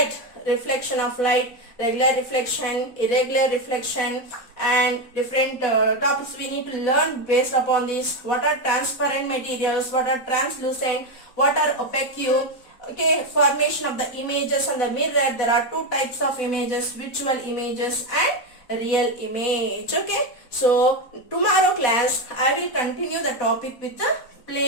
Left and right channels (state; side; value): late; right; 4.1 ms